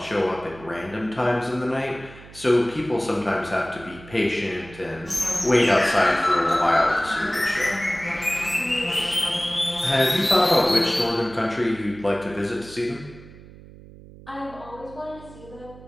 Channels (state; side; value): noise; right; hum, 19 dB below the sound